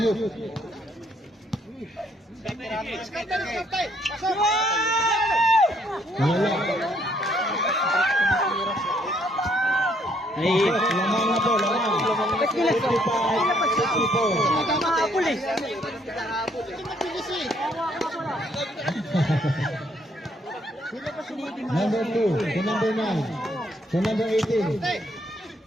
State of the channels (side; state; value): both; normal; correlation 0.68